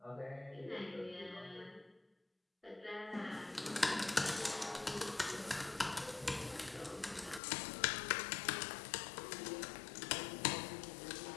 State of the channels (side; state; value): right; drops out; at 7.4 s